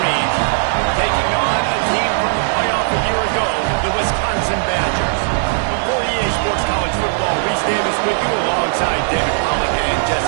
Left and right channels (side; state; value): left; silent; 68 dB below the other